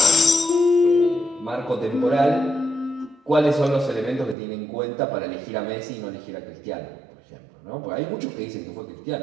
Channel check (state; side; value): drops out; left; at 4.4 s